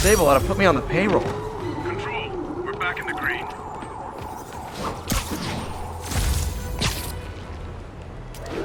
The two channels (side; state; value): both; identical; correlation 1.00